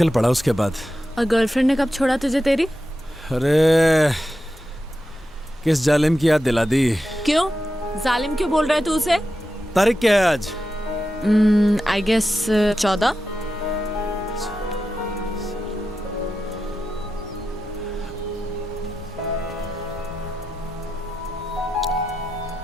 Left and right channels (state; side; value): normal; both; correlation 0.90